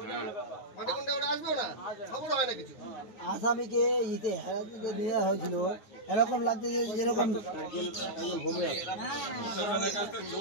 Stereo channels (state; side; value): late; right; 9.5 ms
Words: মাটিকুন্ডে ওরা আসবেও না, খবর হয় না কিছু। আসামিকে ইতে হেরাতে দেওয়া হয়েছিল, এরকম লাগছে যে যেরকম